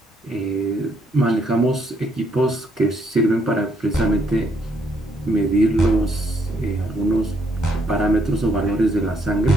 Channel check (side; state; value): both; normal; correlation 0.72